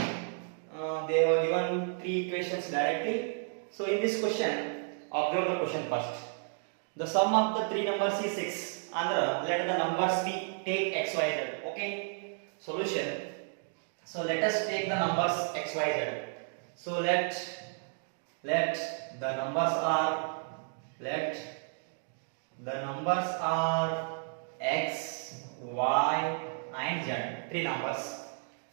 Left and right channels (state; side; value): silent; left; 56 dB below the other